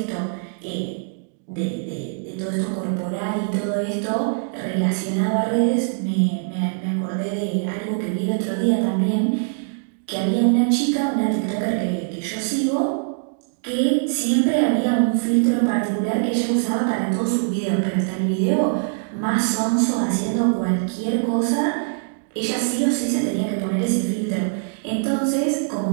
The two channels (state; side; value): silent; left; digital silence